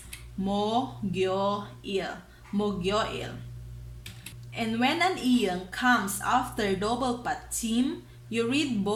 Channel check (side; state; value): both; identical; correlation 1.00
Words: mo, gyo, il. And when an iyang comes after double pachim, you read